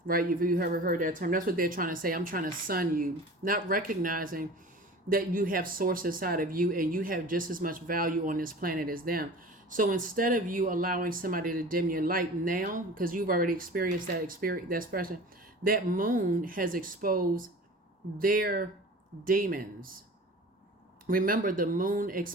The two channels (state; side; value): normal; both; correlation 0.39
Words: right? If you ever heard that term, that's what they're trying to say. I'm trying to son you, not recognizing that you have source inside of you and you have just as much value on this planet as them. So instead of you allowing somebody to dim your light now, because you've already experienced that expression, that moon has exposed their demons. Remember, the moon